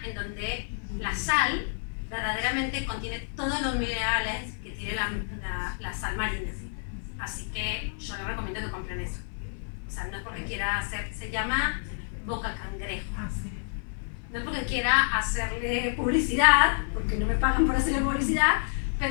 en donde la sal verdaderamente contiene todos los minerales que tiene la sal marina. Así que yo les recomiendo que compren eso. O sea, no es porque quiera hacer, se llama boca cangrejo. No es porque quiera hacerle publicidad, porque no me pagan por hacerle publicidad,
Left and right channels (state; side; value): silent; right; 59 dB below the other